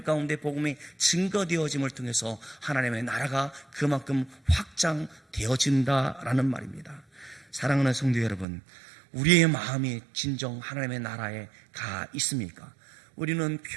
가운데 복음이 증거되어짐을 통해서 하나님의 나라가 그만큼 확장되어진다라는 말입니다. 사랑하는 성도 여러분, 우리의 마음이 진정 하나님의 나라에 가 있습니까? 우리는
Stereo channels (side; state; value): left; drops out; at 8.5 s